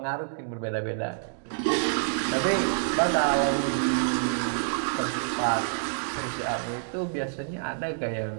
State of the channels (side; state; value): left; silent; digital silence